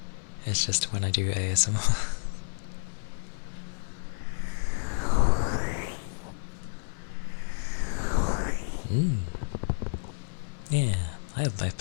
It's just when I do ASMR. Yeah, I have up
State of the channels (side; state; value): right; silent; digital silence